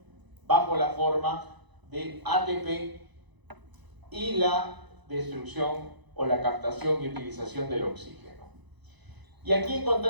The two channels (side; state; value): left; late; 1.0 ms